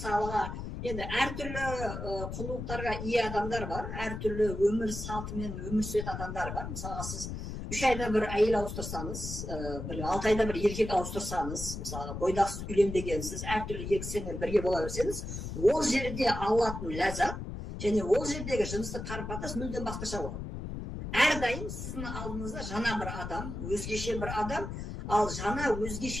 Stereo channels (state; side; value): noise; left; rumble, 6 dB below the sound